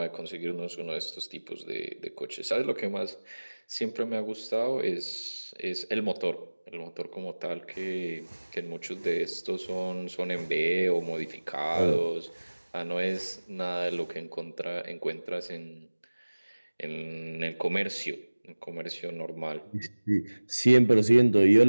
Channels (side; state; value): both; inverted; correlation -1.00